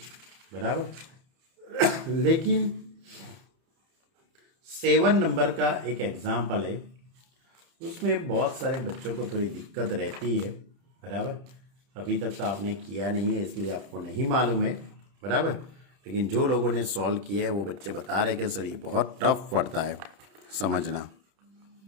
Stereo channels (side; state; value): left; late; 31 ms